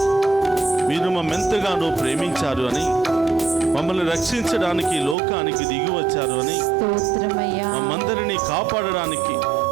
మీరు మమ్మెంతగానో ప్రేమించారు అని, మమ్మల్ని రక్షించడానికి లోకానికి దిగి వచ్చారు అని, స్తోత్రమయ్యా. మమ్మందరినీ కాపాడడానికి,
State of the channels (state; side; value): drops out; left; at 5.2 s